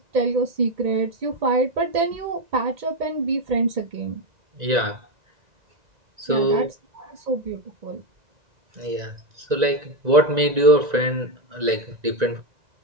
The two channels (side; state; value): left; late; 2.0 ms